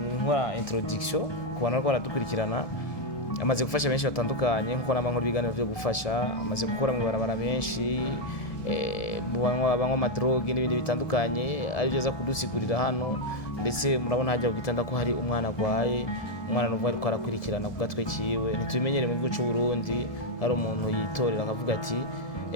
introduction ku bantu bariko baradukurikirana. Amaze gufasha benshi batandukanye, nkuko namwe biganiro byo gufasha, amaze gukora mu barabara benshi, banywa amadroge n'ibindi bitandukanye, ari byo za kudusigurira hano. Ndetse murabona hajya kugitanda ko hari umwana agwaye, umwana n'uvuga ariko arakurikirana ku gatwe kiwe. Ntitubimenyere mu gihugu cy'u Burundi hari umuntu yitorera akavuga ati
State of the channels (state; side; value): late; right; 1.7 ms